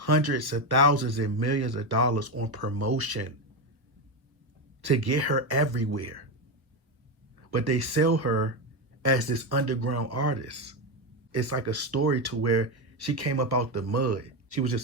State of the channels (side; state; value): left; late; 1.0 ms